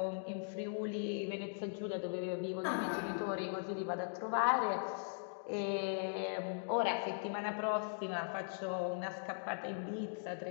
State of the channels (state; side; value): silent; right; digital silence